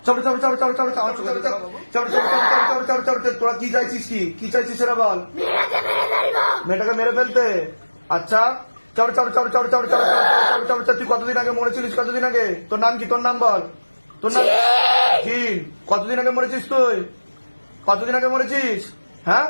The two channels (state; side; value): inverted; both; correlation -1.00